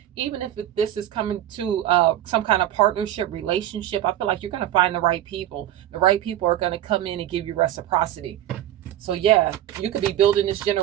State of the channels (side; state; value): left; quieter; 12.5 dB